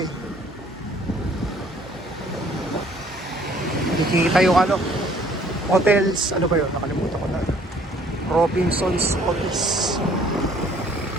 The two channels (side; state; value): both; normal; correlation 0.58